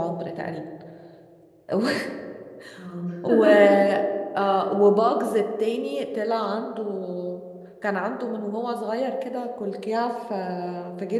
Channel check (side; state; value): both; identical; correlation 1.00